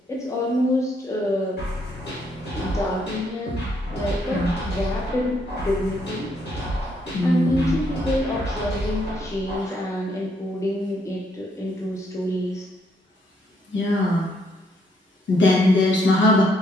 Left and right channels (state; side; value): normal; both; correlation 0.72